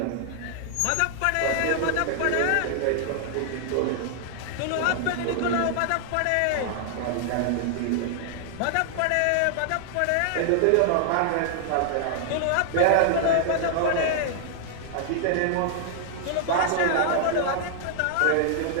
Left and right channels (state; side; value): different; both; correlation 0.00